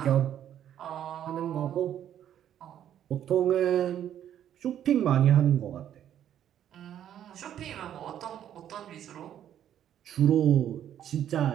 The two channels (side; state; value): left; quieter; 10.5 dB